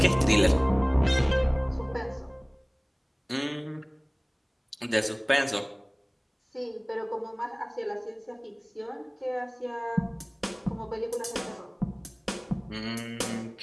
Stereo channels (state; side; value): identical; both; correlation 1.00